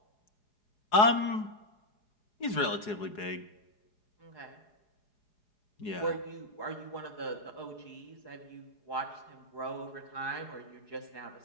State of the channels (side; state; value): right; late; 4.8 ms